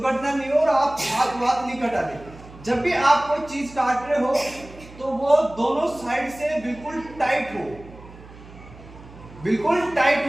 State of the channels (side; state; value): right; noise; hum, 19 dB below the sound